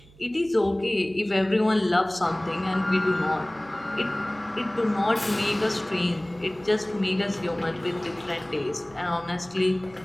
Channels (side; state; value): right; noise; hum, 25 dB below the sound